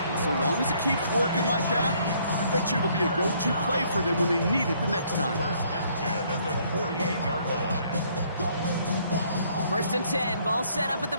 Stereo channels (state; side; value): inverted; both; correlation -0.65